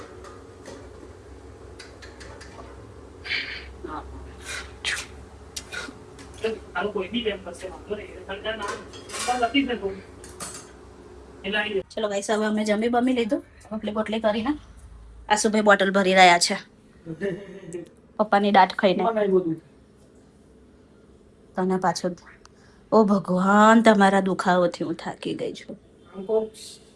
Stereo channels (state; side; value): identical; both; correlation 1.00